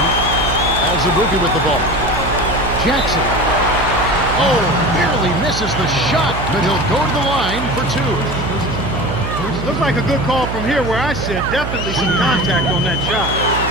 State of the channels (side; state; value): right; noise; hum, 6 dB below the sound